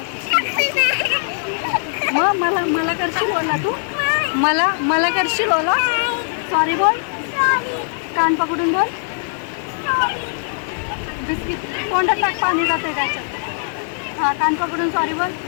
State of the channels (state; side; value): silent; right; digital silence